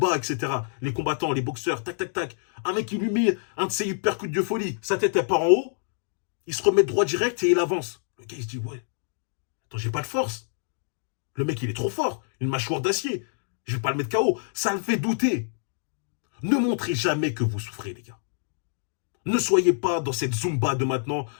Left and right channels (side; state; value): right; silent; digital silence